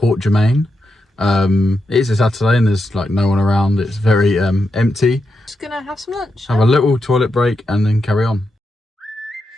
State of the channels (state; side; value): normal; both; correlation 0.85